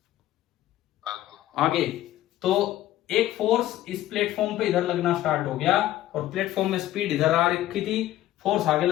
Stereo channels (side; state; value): right; quieter; 14.0 dB